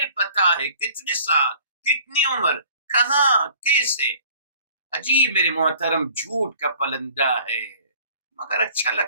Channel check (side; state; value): both; inverted; correlation -0.52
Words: پتا ہے، کتنے سال، کتنی عمر، کہاں، کیسے. عجیب میرے محترم، جھوٹ کا پلندہ ہے مگر اچھا